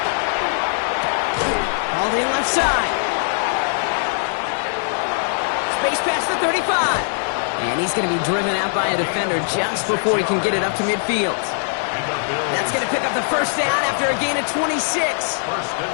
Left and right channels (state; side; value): silent; right; 65 dB below the other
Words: Hauled in left side. Space past the 35. And he's going to be driven out by a defender just before he can get it up to midfield. That's going to pick up the first down after a gain of 26.